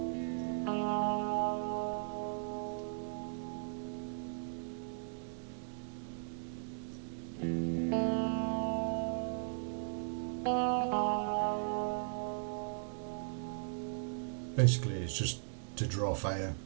Basically, it's just to draw fire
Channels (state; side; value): silent; left; digital silence